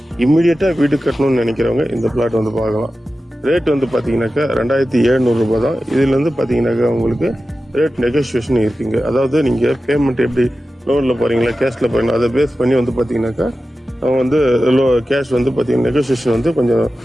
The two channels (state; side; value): normal; both; correlation 0.94